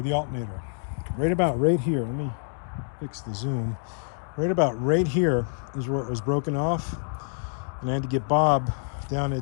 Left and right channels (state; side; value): silent; right; 60 dB below the other